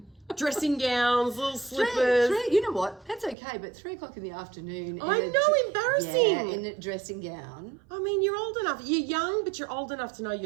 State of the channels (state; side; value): drops out; left; at 3.4 s